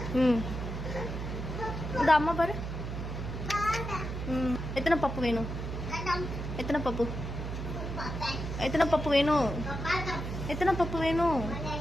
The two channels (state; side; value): noise; right; hum, 5 dB below the sound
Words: ம் இந்த அம்மா பாரு. எத்தனை பப்பு வேணும்? எத்தனை பப்பு? எத்தனை பப்பு வேணும்? எத்தனை பப்பு வேணும்?